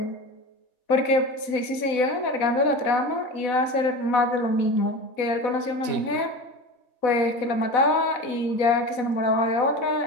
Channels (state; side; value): late; right; 4.0 ms